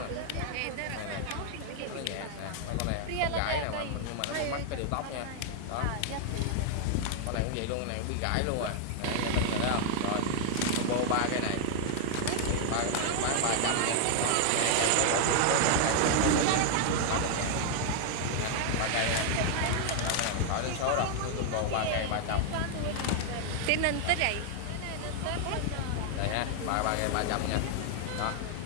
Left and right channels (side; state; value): both; different; correlation 0.00